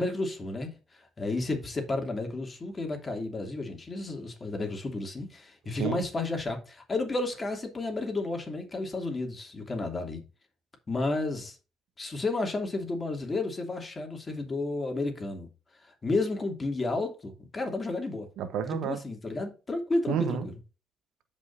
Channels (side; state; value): both; normal; correlation 0.78